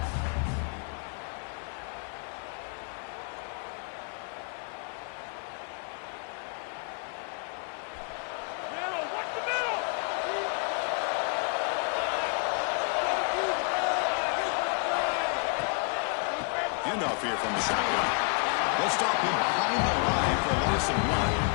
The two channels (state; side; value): quieter; right; 39.0 dB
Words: Handoff here from the shotgun. They'll stop him behind the line for a loss of 1.